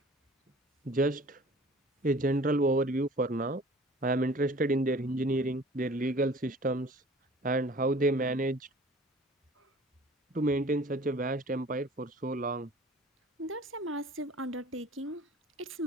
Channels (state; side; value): normal; both; correlation 0.47